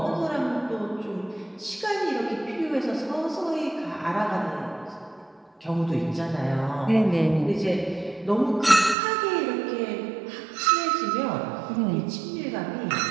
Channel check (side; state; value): left; drops out; at 9.0 s